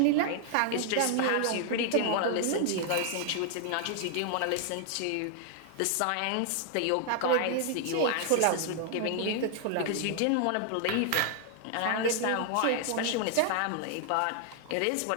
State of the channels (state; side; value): different; both; correlation 0.00